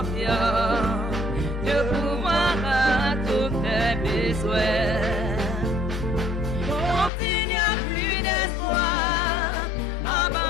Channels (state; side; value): drops out; right; at 7.1 s